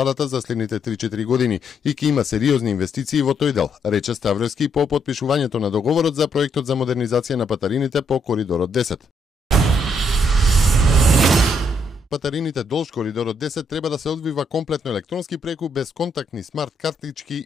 за следните 3-4 години и ќе има сериозни инвестиции во тој дел, рече Ставревски по потпишувањето на договорот за проектот за модернизација на патарините по коридорот 10. Патарините долж коридорот 10 треба да се одвива комплетно електронски преку безконтактни смарт картички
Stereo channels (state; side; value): normal; both; correlation 0.74